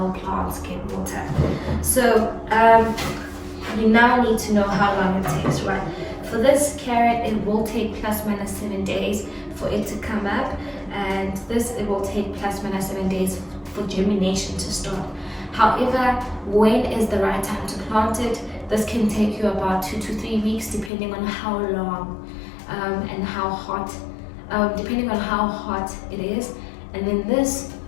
plants get water. So you now need to know how long it takes, right? For this carrot, it will take plus minus 7 days for it to come up, and this, it will take plus minus 7 days for germination to start. However, when is the right time to plant it? This can take you about 2 to 3 weeks, depending on how long and how hot, depending on how hot it is. And then this,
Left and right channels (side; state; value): right; drops out; at 20.9 s